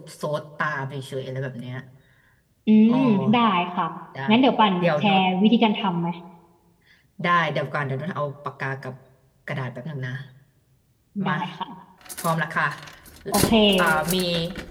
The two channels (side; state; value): both; identical; correlation 1.00